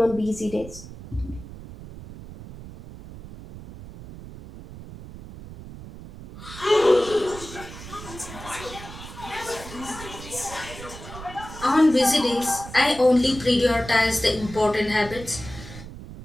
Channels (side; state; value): right; noise; rumble, 14 dB below the sound